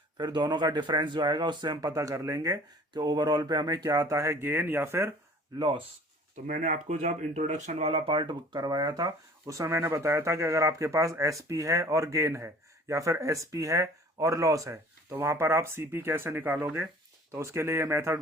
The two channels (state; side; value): normal; both; correlation 0.48